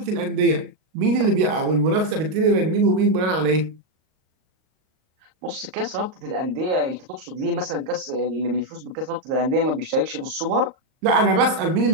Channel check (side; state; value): left; late; 38 ms